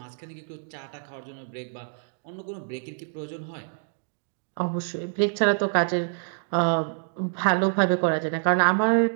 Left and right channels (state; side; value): silent; left; digital silence